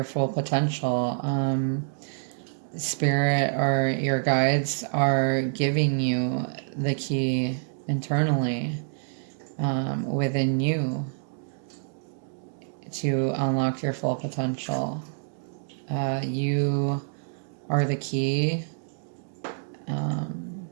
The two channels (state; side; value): silent; left; digital silence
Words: full potential. Spirit or your guides are giving you the key internally within you to unlock your full potential. You are the key